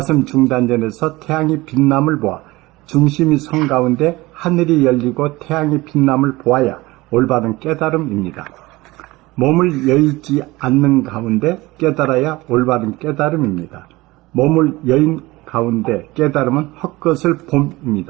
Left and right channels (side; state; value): left; quieter; 20.4 dB